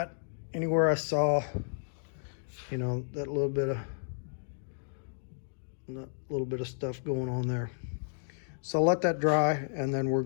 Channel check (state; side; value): silent; right; digital silence